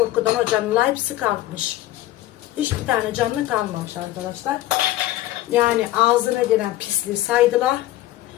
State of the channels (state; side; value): quieter; right; 15.2 dB